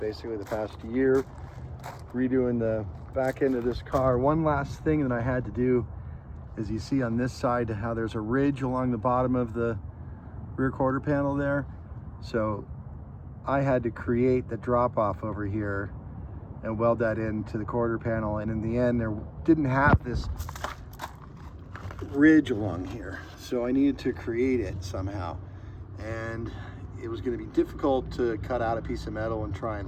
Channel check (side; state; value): both; identical; correlation 1.00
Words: the past year redoing the back end of this car. One last thing that I had to do is, you see on this side how there's a ridge along the bottom of the rear quarter panel there. So I had to create the drop off over here and weld that into the quarter panel, and in the end there didn't have this ridge along here, so I needed to create it somehow. And it was going to be difficult to cut out a piece of metal and try